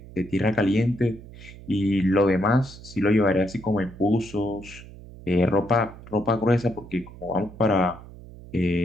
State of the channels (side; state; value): right; noise; hum, 17 dB below the sound